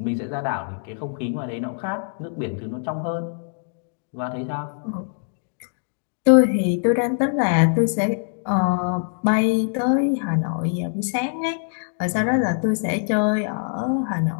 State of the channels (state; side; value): silent; right; digital silence